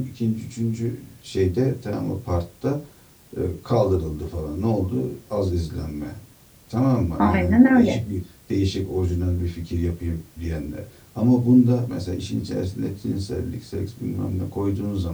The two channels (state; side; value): identical; both; correlation 1.00